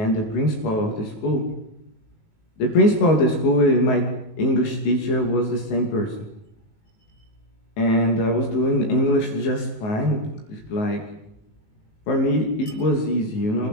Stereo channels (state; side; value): late; right; 19 ms